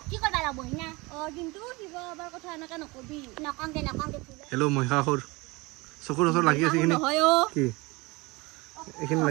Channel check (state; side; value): quieter; left; 24.4 dB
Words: কৰিব লাগিব না কিন্তু শিৱ বাবাৰ কথা এনেকে নকবি নকংগে হেল্ল' মহিষাসুৰ চকুৰ ওচৰত লাগি আছে এইখিনি কি এইখিনি